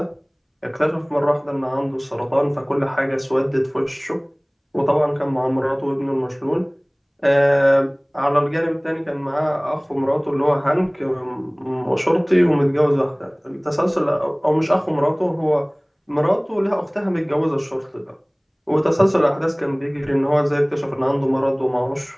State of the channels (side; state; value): both; identical; correlation 1.00